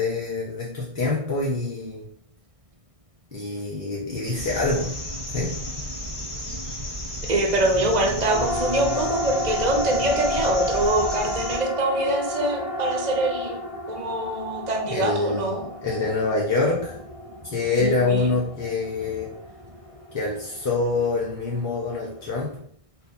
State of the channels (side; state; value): left; late; 1.6 ms